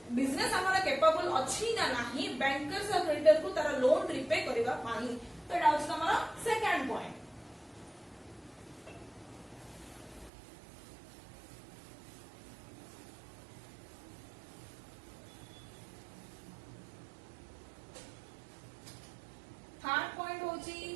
बिजनेस हमरो कैपेबल अछि ना नाही बैंकर्स और क्रेडिटर को तारा लोन रीपे करबा पाई. तो एटा होछि हमरो सेकंड पॉइंट. थर्ड पॉइंट होची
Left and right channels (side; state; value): left; drops out; at 10.3 s